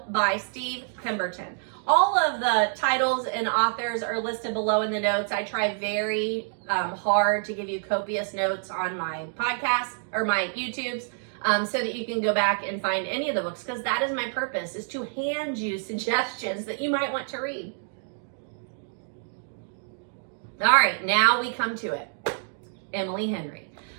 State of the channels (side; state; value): left; silent; digital silence